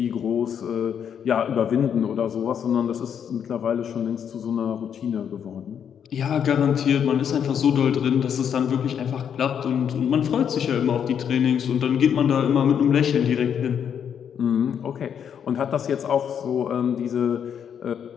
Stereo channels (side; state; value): right; quieter; 8.2 dB